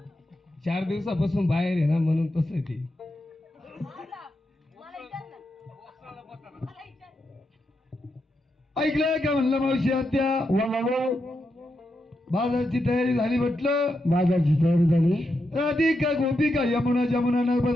4 दिवसापासून बाहेर आहे ना म्हणून तसं आहे ते. मला विचार ना. मला विचार. ऐकलं का म्हणलं मावशी आत्या बाजारची तयारी झाली म्हटलं. बाजारची तयारी झाली राधिका गोपिका यमुना जमुना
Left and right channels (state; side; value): normal; both; correlation 0.85